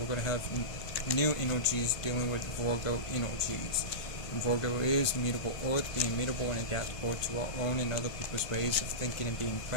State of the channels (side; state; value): right; late; 1.4 ms